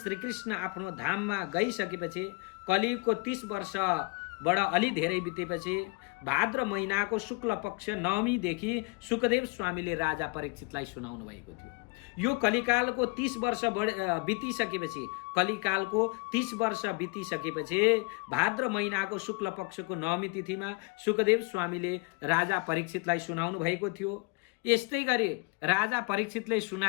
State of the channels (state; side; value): quieter; right; 29.7 dB